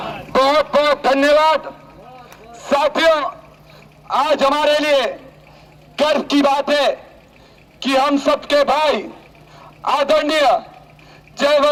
बहुत बहुत धन्यवाद साथियों। आज हमारे लिए गर्व की बात है कि हम सबके भाई आदरणीय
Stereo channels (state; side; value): identical; both; correlation 1.00